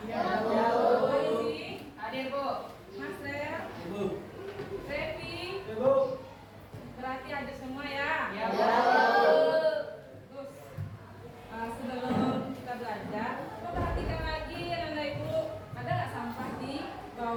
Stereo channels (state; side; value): identical; both; correlation 1.00